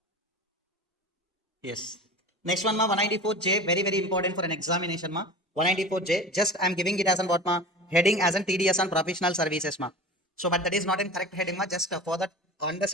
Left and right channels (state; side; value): normal; both; correlation 0.34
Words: Yes. Next one, ma, 194J, very, very important for an examination, ma. 194J, just I'm giving it as an what, ma, heading as an TDS on professional services, ma. So, but that is not in correct heading, ma, just for that